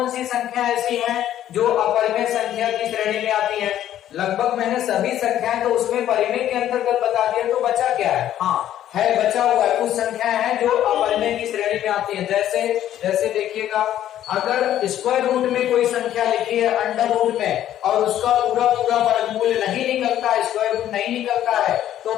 सी संख्या ऐसी हैं जो अपरिमेय संख्या की श्रेणी में आती हैं? लगभग मैंने सभी संख्याएं तो उसमें परिमेय के अंतर्गत बता दिया, तो बचा क्या है? हाँ है, बचा हुआ है कुछ संख्याएं हैं जो अपरिमेय की श्रेणी में आती हैं। जैसे देखिएगा, अगर स्क्वायर रूट में कोई संख्या लिखी है अंडर रूट में और उसका पूरा वर्गमूल नहीं निकलता, स्क्वायर रूट नहीं निकलता है, तो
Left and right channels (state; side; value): quieter; right; 11.8 dB